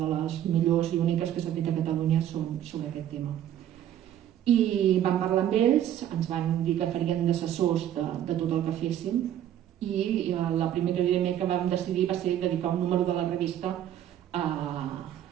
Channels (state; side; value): quieter; left; 11.2 dB